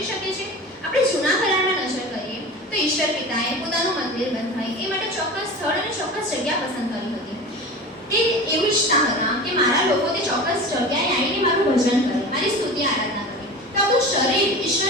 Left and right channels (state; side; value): normal; both; correlation 0.33